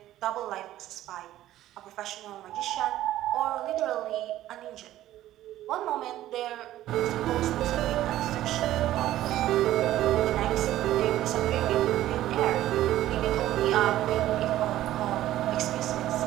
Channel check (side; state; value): left; quieter; 13.9 dB